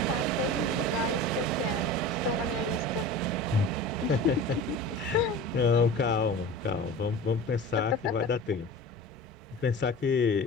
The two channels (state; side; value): normal; both; correlation 0.35